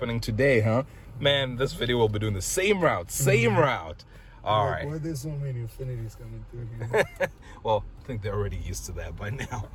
today, huh? Man, this video will be doing the same route, All right. Why are there so many Infinitis coming through here? Well, I think they're already used to that by now.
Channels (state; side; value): identical; both; correlation 1.00